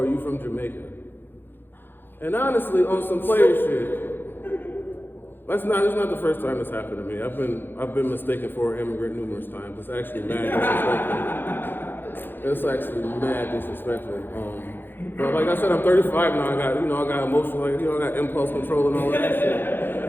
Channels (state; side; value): late; right; 0.098 ms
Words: you from Jamaica?" And honestly, on some player shit, it's not the first time this happened to me. I've been mistaken for an immigrant numerous times. It's actually mad disrespectful. It's actually mad disrespectful. But like I said, I'm 35 now. I got emotional, I got impulse control and all of that